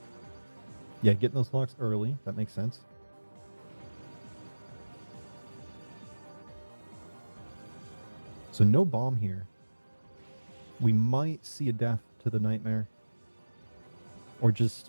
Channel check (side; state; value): both; inverted; correlation -1.00